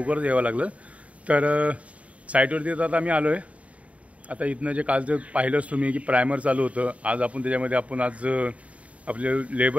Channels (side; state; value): left; late; 0.066 ms